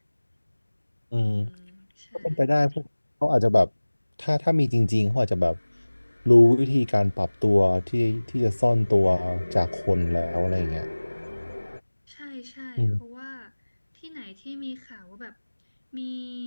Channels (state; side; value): inverted; both; correlation -1.00